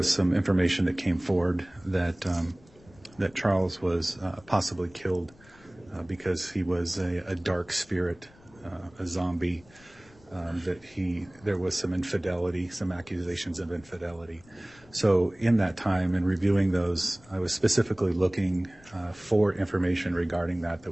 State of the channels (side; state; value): left; noise; rumble, 26 dB below the sound